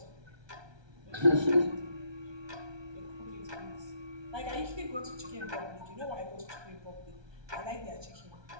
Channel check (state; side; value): late; left; 1.2 ms